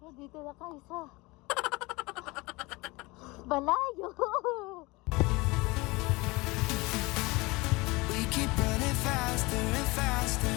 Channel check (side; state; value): right; quieter; 23.6 dB